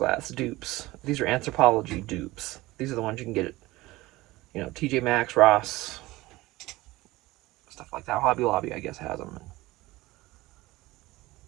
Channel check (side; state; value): left; quieter; 19.2 dB